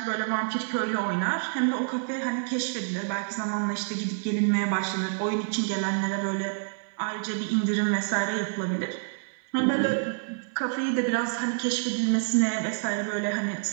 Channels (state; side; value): silent; left; 58 dB below the other